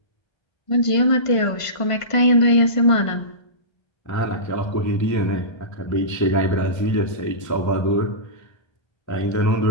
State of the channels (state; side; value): late; right; 1.5 ms